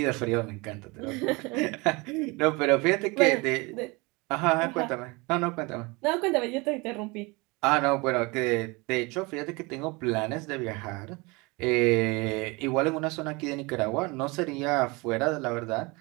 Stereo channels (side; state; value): left; quieter; 26.0 dB